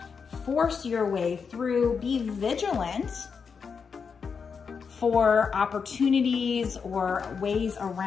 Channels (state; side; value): quieter; right; 5.9 dB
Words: force your way through, be vigilant for opportunities or ways